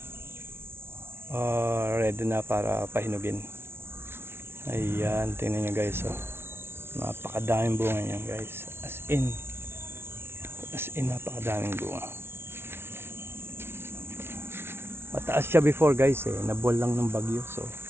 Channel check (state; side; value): late; left; 0.12 ms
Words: ready na para pahinugin. Ayan, tingnan nyo guys, oh. Napakadaming bunga niyan guys, as in napakadaming bunga. Mataas siya before guys, nabol lang ng bagyo. So